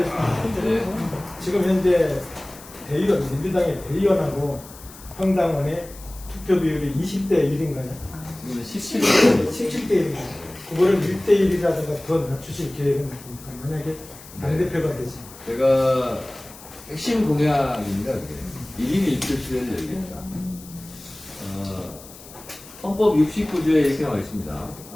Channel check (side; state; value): left; noise; hiss, 19 dB below the sound